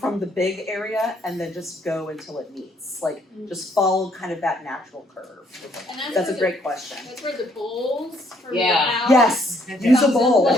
big area and then just go until it meets. Like just follow kind of that natural curve. And That's a great question. That's where the bowls from your Yeah. house. Yes. Use a bowl.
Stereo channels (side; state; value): both; normal; correlation 0.67